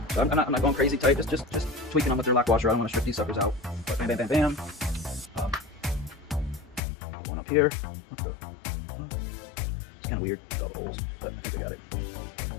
So I'm not going crazy tight. Just tweaking them with their lock washer. I don't want to strip these suckers out. But bam, bam, bam, bam. One up here. It's kind of weird without holes, but I think I got it.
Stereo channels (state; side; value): drops out; right; at 6.8 s